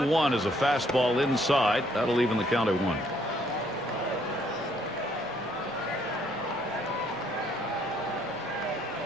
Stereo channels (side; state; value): both; normal; correlation 0.67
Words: 1 is a fastball inside. That'll even the count at 1.